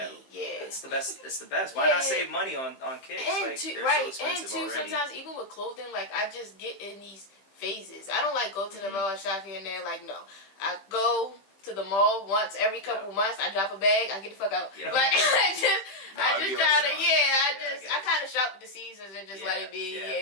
the best. It's the best. Why not save money on kicks? And like, too, they're so expensive and already. sometimes even with clothing, like I just get in these phases. I don't like go to the mall shop here and there. Like no, I go to the mall once every couple months. I drop a bag. I get the fuck out. Like I just try to. I kind of shop with the seasons and just let it be.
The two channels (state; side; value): late; right; 15 ms